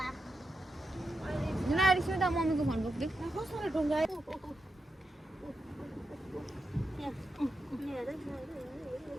मम्मीको फोन बोक्दै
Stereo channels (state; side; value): normal; both; correlation 0.87